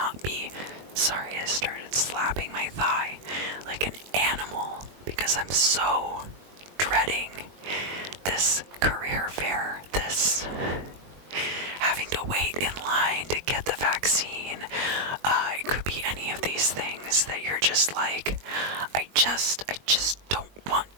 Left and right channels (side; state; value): left; late; 21 ms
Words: be, sorry, I started slapping my thigh like an animal because I'm so dreading this career fair, this having to wait in line to get the vaccine. It could be any of these things that you're just like, I just don't want